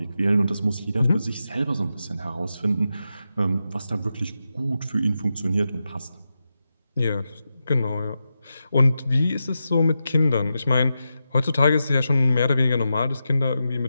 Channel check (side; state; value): both; inverted; correlation -0.89